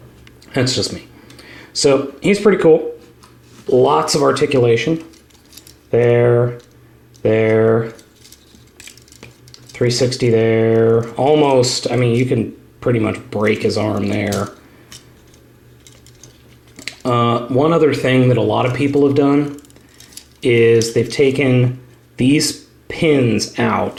that's just me. So he's pretty cool. Lots of articulation. There, 360 there. Almost, I mean, you can pretty much break his arm there. One other thing that a lot of people have done is they've taken these pins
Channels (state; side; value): identical; both; correlation 1.00